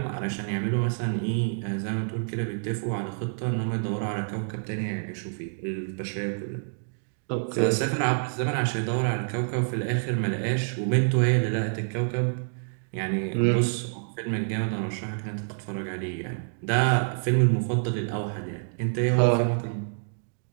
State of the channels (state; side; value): silent; left; digital silence